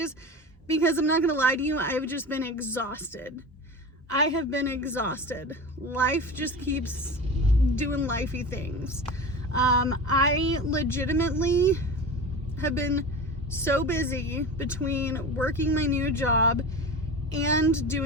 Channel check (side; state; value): both; normal; correlation 0.30